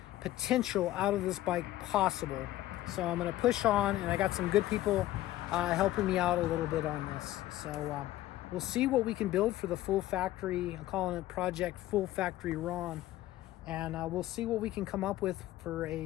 potential out of this bike possible. So I'm going to push on, and I got some good people helping me out a little bit on this. So we'll see what we can build for the full factory. I'm calling it Project Full Factory Ron, and we'll see what we can come up with for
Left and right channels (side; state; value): right; quieter; 15.2 dB